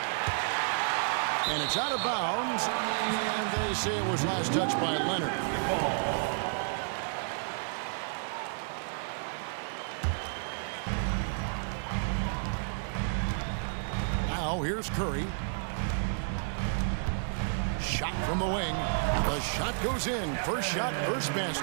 And it's out of bounds, and they say it was last touched by Leonard. Now here's Curry. Shot from the wing. The shot goes in. First shot, first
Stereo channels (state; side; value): silent; left; 57 dB below the other